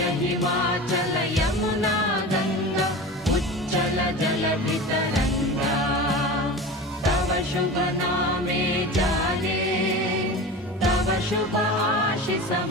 हिमाचल यमुना गंगा उच्चल जलधितरंगा तव शुभ नामे जागे तव शुभ आशीष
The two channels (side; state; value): both; normal; correlation 0.31